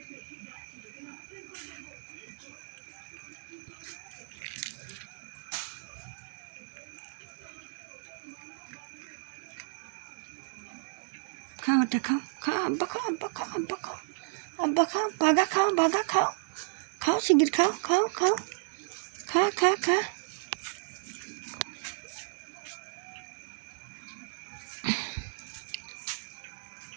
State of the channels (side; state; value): left; silent; 56 dB below the other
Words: খাওয়াটা খাও, খাও আব্বা খাও, আব্বা খাও, আব্বা খাও, আব্বা খাও, বাঘা খাও, বাঘা খাও, খাও শিগগির খাও খাও খাও, খা খা খা।